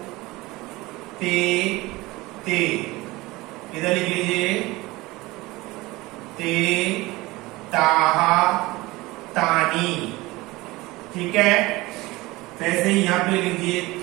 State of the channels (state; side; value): quieter; left; 20.8 dB